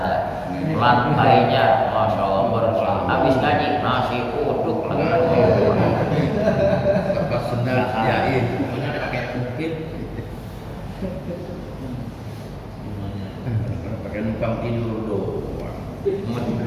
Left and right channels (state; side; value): identical; both; correlation 1.00